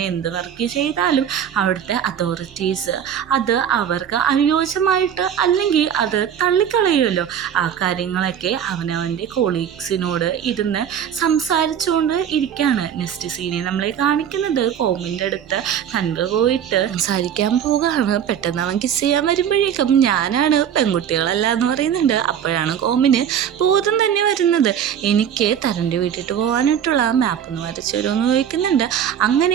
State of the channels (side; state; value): left; quieter; 9.0 dB